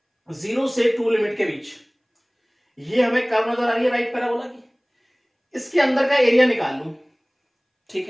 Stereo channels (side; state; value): both; identical; correlation 1.00